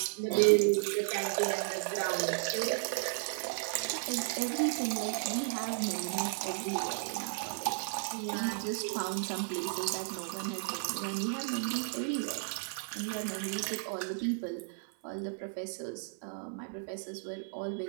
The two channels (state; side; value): silent; left; 55 dB below the other